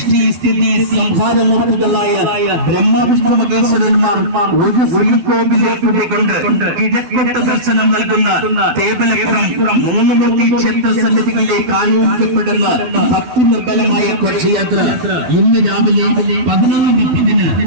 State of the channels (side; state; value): left; late; 12 ms